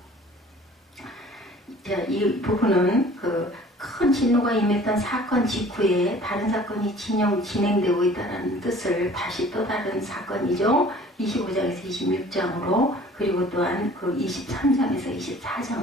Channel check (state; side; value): normal; both; correlation 0.49